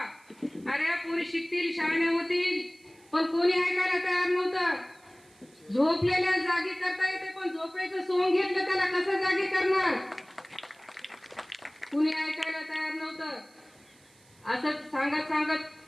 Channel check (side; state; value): right; noise; hiss, 29 dB below the sound